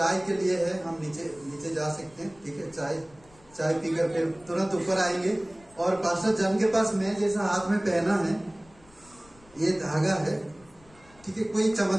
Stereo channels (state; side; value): noise; left; rumble, 27 dB below the sound